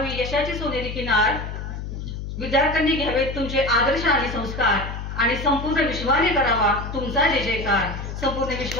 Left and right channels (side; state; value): left; noise; hum, 7 dB below the sound